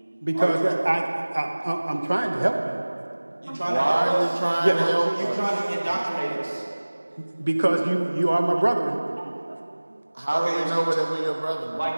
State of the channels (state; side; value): inverted; both; correlation -1.00